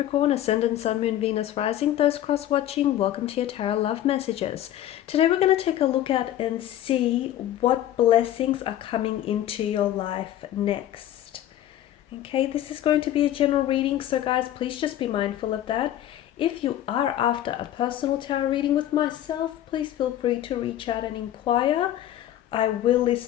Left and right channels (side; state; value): right; quieter; 12.4 dB